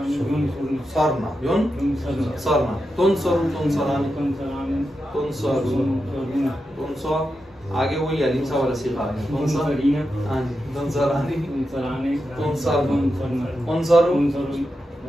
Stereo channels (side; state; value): both; normal; correlation 0.88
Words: युनसरना, तुनसरु, तुनसरानी, तुनसरुन, तुनसर, आगे वही अलीम सा वाला सीखा है। कौन सा? हाँ जी, तुनसरानी,